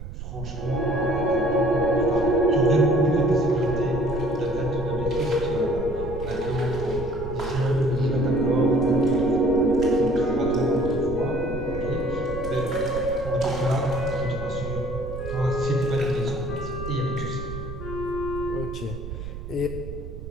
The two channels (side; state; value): right; noise; rumble, 9 dB below the sound